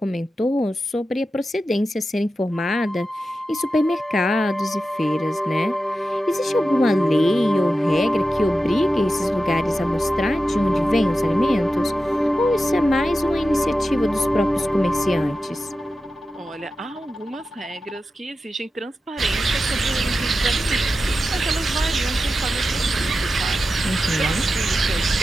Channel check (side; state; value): both; normal; correlation 0.92